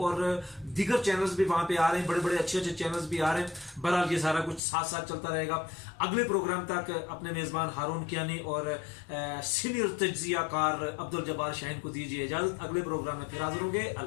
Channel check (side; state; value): right; drops out; at 4.6 s